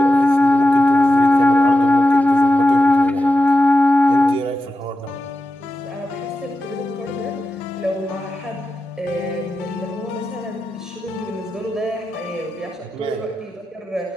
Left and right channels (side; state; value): both; normal; correlation 0.90